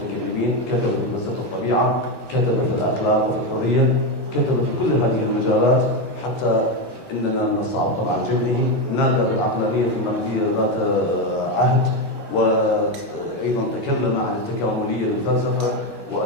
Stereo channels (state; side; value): late; left; 1.8 ms